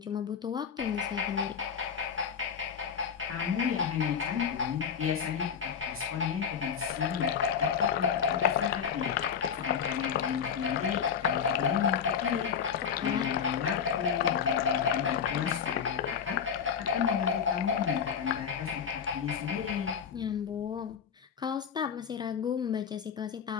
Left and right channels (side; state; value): right; quieter; 7.3 dB